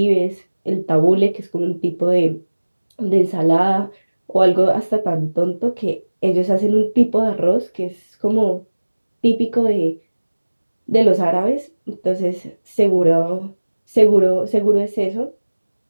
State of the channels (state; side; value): inverted; both; correlation -1.00